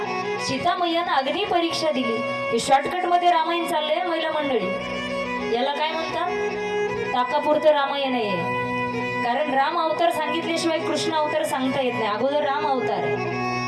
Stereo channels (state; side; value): identical; both; correlation 1.00